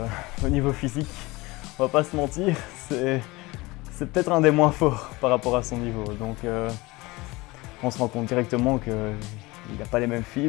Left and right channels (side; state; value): right; quieter; 22.3 dB